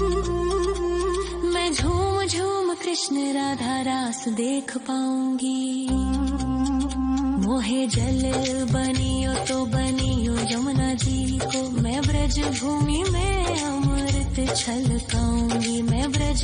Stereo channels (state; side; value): identical; both; correlation 1.00